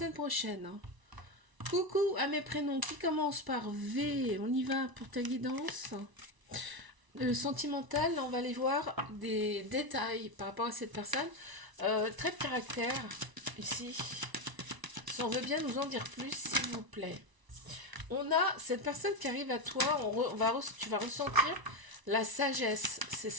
prochaine. Coucou à mes prénoms qui commencent par V. On y va pour ta guidance. Le sentimental, on va aller voir des détails par rapport à cette personne. Trait de caractère, ici. Si on veut bien nous en dire plus, s'il vous plaît. On a cette personne qui arrive à toi. Tu vas ressentir la sagesse chez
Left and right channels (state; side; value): late; left; 1.0 ms